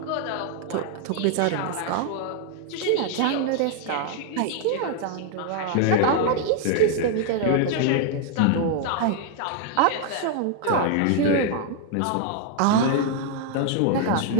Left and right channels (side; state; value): both; different; correlation 0.01